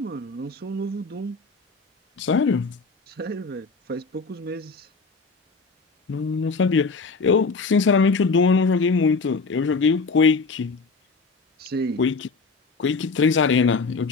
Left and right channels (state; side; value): quieter; right; 4.2 dB